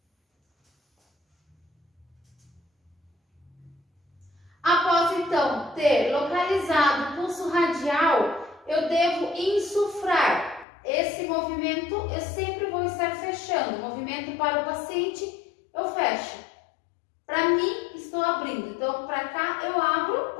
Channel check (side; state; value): right; drops out; at 10.7 s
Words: Após, então, ter localizado o pulso radial, eu devo insuflar. Esse movimento eu sempre vou estar fechando. Movimento para o paciente, eu fecho. Para mim, estou abrindo. Então, para cá eu abro,